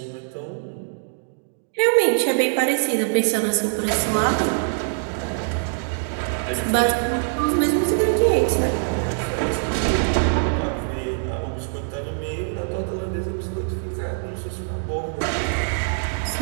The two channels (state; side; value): silent; left; digital silence